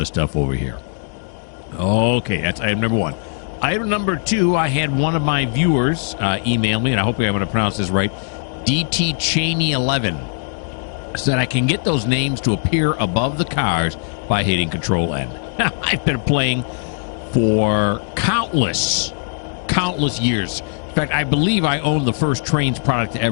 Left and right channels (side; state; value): right; silent; digital silence